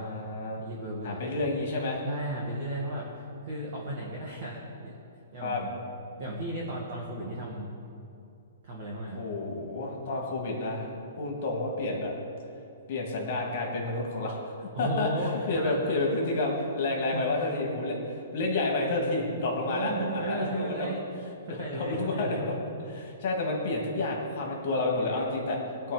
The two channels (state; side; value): inverted; both; correlation -0.44